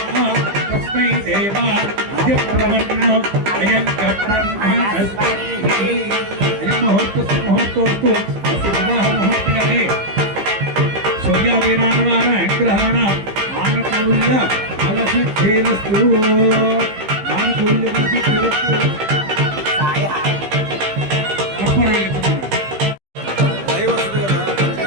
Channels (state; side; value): late; left; 15 ms